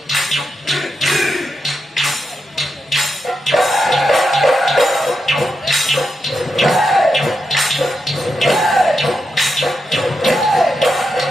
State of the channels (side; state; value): both; normal; correlation 0.86